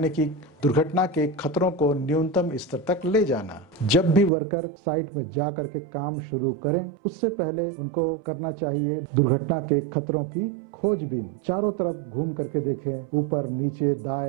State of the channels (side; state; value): left; drops out; at 4.3 s